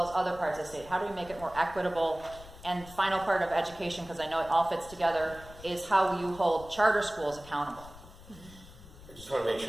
as other parts of the state? How do we make it more equitable? And final part of education, because I know it all fits together, is how you hold charter schools accountable. I just want to make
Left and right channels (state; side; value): noise; left; rumble, 18 dB below the sound